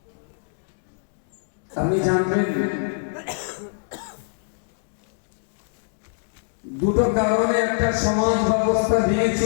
আপনি জানবেন দুটো কারণে একটা সমাজ ব্যবস্থা ভেঙে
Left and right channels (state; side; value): silent; right; digital silence